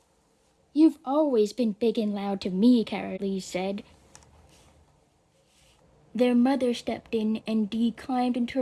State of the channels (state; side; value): identical; both; correlation 1.00